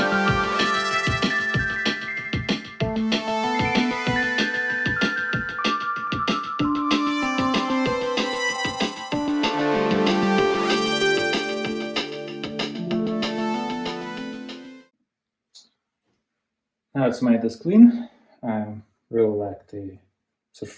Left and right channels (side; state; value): both; identical; correlation 1.00